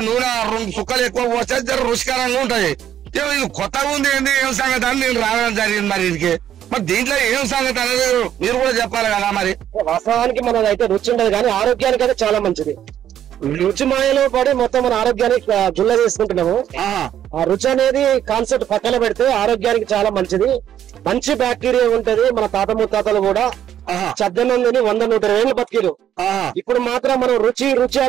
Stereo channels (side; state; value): left; quieter; 10.6 dB